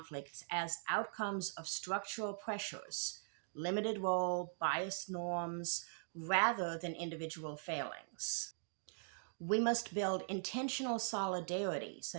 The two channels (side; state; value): left; silent; digital silence